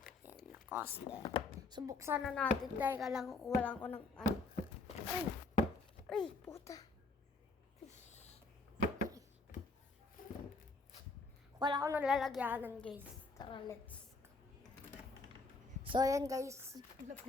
Ayan, Lacoste. So buksan na natin. Dahil lang kukuha ko ng ano. Ay, puta. Wala ko nalalagyanan, guys. Tara, let's go. So, ayan, guys.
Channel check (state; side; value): quieter; right; 3.5 dB